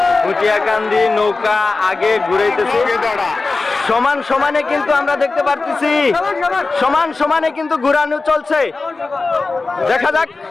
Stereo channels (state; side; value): quieter; right; 3.8 dB